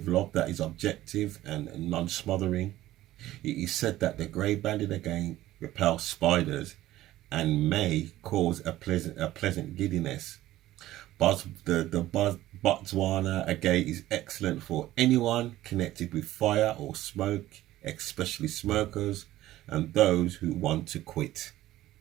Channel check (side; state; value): left; quieter; 15.1 dB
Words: love that is objective and non-smothering. It is said that the grey-banded agate repels spiders and may cause a pleasant giddiness. But the Botwana agate is excellent for anyone connected with fire or smoke, especially smokers and those who want to quit.